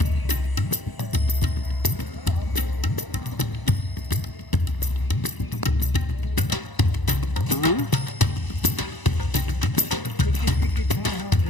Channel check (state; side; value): late; right; 1.0 ms